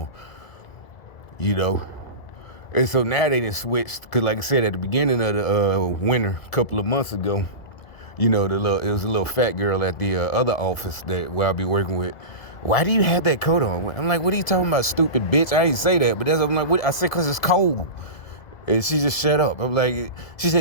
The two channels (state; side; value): late; right; 2.0 ms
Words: And so now they done switched, because like I said, at the beginning of the winter, a couple of months ago, it was a little fat girl at the other office where I'll be working with. Why do you have that coat on? I'm like, what are you talking about, stupid bitch? I didn't say that, but I'm like, what? I said, because it's cold. And she just shut up. I'm like, she